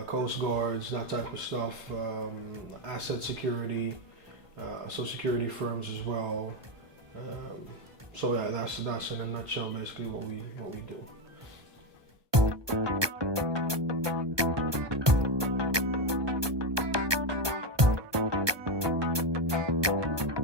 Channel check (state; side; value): late; left; 1.2 ms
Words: coast guards, that type of stuff, asset security, so security firms as well. So yeah, that's in a nutshell basically what we do.